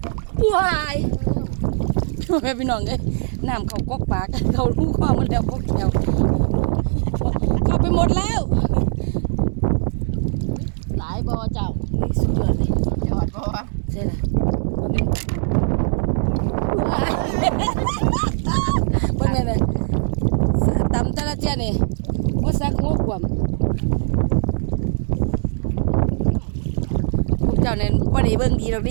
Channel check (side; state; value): left; silent; digital silence